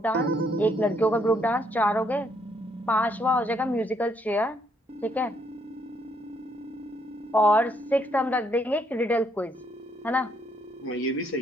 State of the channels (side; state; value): both; normal; correlation 0.71